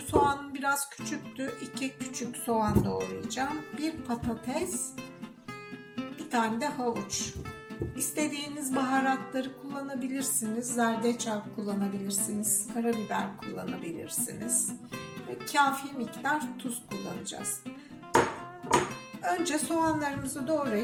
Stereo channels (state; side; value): identical; both; correlation 1.00